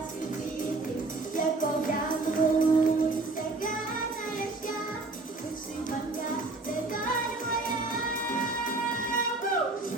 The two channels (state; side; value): quieter; left; 3.3 dB